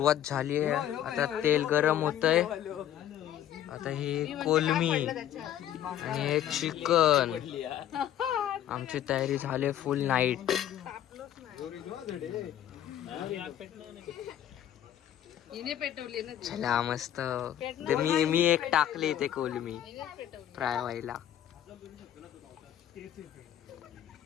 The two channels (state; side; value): quieter; right; 11.4 dB